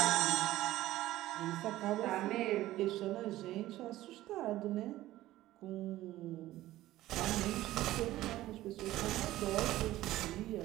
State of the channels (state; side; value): quieter; left; 15.5 dB